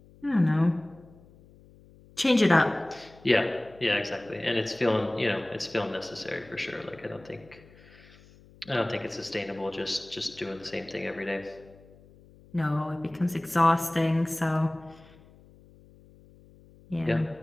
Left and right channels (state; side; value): noise; left; hum, 25 dB below the sound